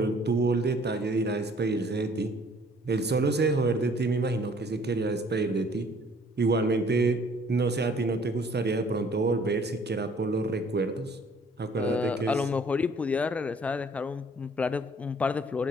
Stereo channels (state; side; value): normal; both; correlation 0.57